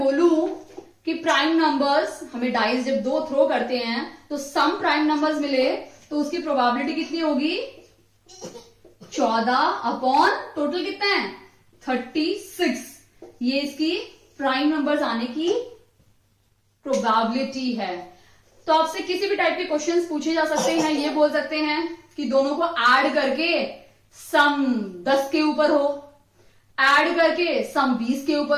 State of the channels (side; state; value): both; identical; correlation 1.00